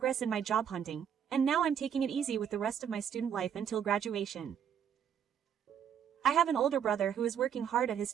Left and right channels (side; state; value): left; quieter; 8.5 dB